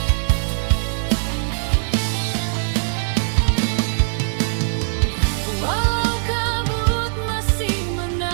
Walau kabut masih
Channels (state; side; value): silent; left; 65 dB below the other